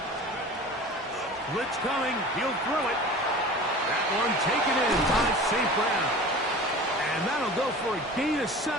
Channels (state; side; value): normal; both; correlation 0.39